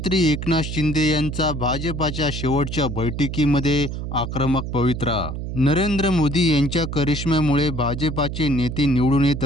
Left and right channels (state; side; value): noise; right; hum, 6 dB below the sound